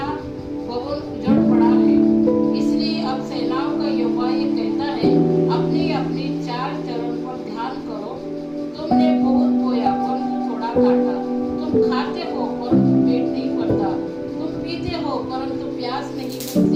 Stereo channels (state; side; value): identical; both; correlation 1.00